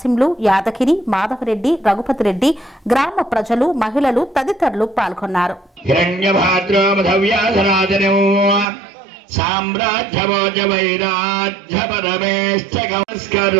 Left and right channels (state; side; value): drops out; left; at 8.7 s